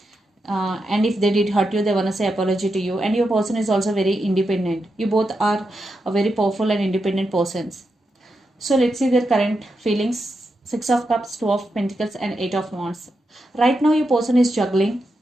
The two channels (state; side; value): normal; both; correlation 0.86